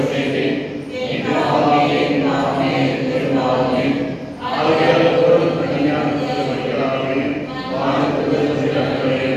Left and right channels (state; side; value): identical; both; correlation 1.00